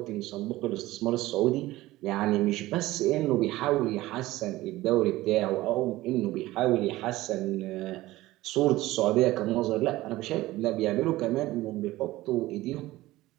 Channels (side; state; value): left; quieter; 17.5 dB